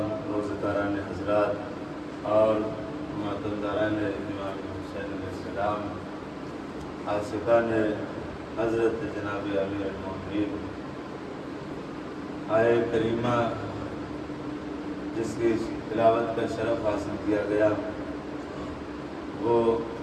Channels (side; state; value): both; identical; correlation 1.00